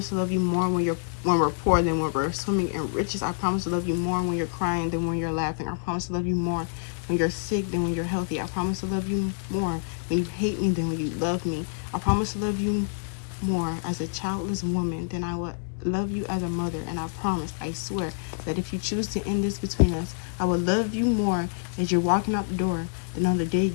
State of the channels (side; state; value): right; silent; digital silence